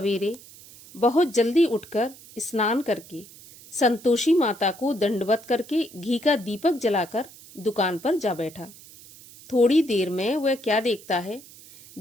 बहुत जल्दी उठकर स्नान करके संतोषी माता को दंडवत करके घी का दीपक जलाकर दुकान पर जा बैठा। थोड़ी देर में वह क्या देखता है,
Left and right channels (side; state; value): right; noise; hiss, 20 dB below the sound